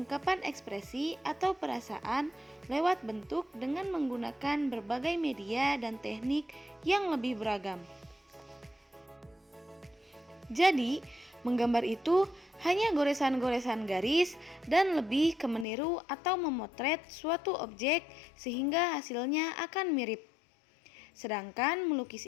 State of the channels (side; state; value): right; drops out; at 15.7 s